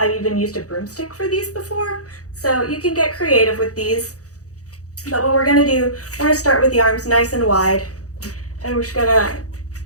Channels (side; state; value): right; late; 0.66 ms